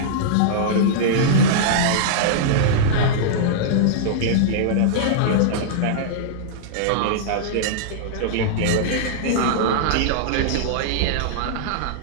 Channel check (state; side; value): different; both; correlation -0.02